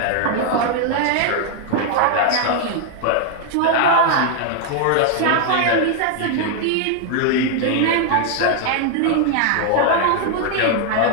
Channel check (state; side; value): different; both; correlation 0.00